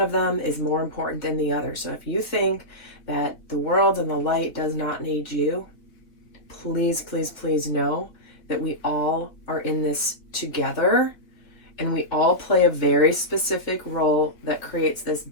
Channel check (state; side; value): late; right; 3.5 ms